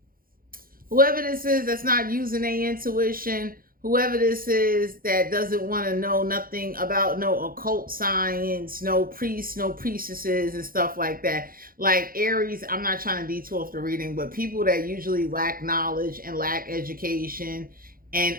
whoever this is that's not using their intuition, whoever this is that doesn't want to know nothing about no occult science, no priests, no priestesses and stuff like that. Like Aries, I'm not trying to detour off the reading, but people that usually lack knowledge and lack education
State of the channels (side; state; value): left; late; 0.42 ms